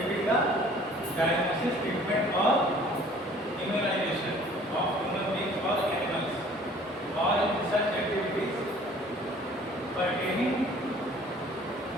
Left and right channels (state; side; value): normal; both; correlation 0.52